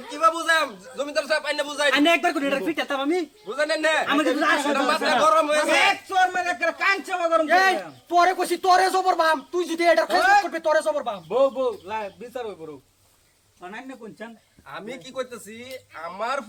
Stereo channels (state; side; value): identical; both; correlation 1.00